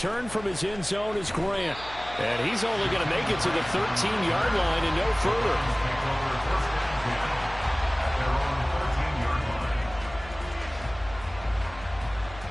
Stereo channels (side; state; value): left; noise; hum, 17 dB below the sound